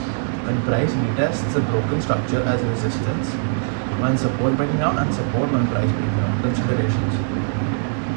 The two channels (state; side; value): silent; left; 65 dB below the other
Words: when price retests a broken structure as a resistance, when support breaking down and support when price breaking down. Considerations.